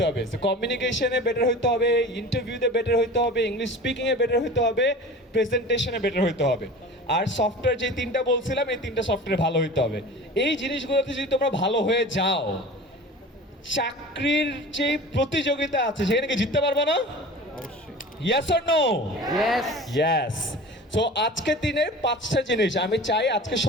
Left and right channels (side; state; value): both; normal; correlation 0.38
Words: হবে। কমিউনিকেশনে বেটার হইতে হবে, ইন্টারভিউতে বেটার হইতে হবে, ইংলিশ স্পিকিংয়ে বেটার হইতে হবে, প্রেজেন্টেশনে বেটার হইতে হবে। আর সফটওয়্যার যে 3টা বলছিলাম, এই 3টা সফটওয়্যার ভালো হইতে হবে। এই জিনিসগুলোতে যদি তোমরা ভালো হয়ে যাও, চাকরির যে প্রতিযোগিতা আছে সেখানে কি জিততে পারবে না? Yes or no? Yes. Yes. So আজকের দিনে 5টা জিনিস আমি চাই আজকে